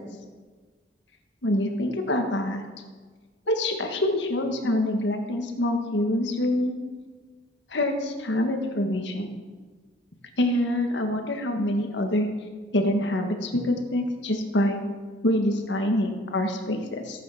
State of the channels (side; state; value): both; normal; correlation 0.51